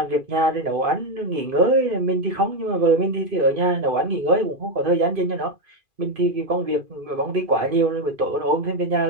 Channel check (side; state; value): left; late; 2.5 ms